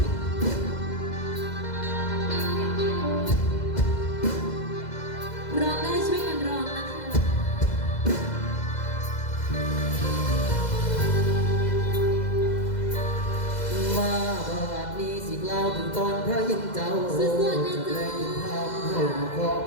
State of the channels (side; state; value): right; late; 2.0 ms